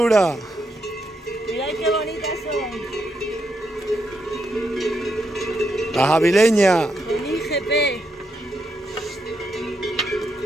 Mirad qué bonitas son. Las avileñas. El IGP.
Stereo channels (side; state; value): both; normal; correlation 0.81